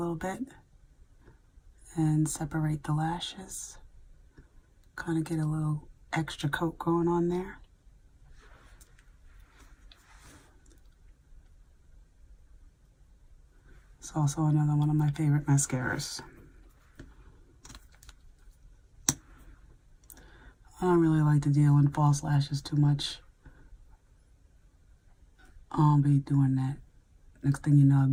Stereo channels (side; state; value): both; identical; correlation 1.00